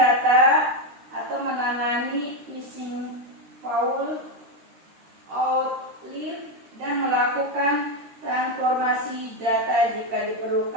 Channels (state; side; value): late; left; 13 ms